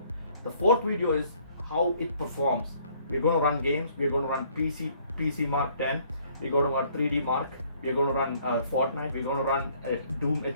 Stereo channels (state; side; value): inverted; both; correlation -0.62